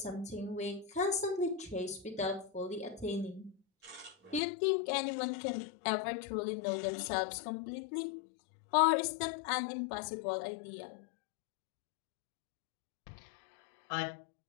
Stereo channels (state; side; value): drops out; right; at 4.4 s